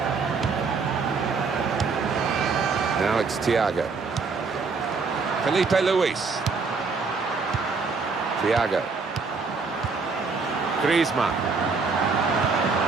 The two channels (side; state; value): left; quieter; 4.6 dB